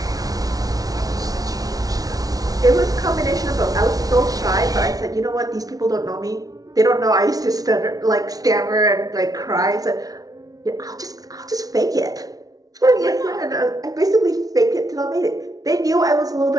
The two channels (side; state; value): left; late; 0.18 ms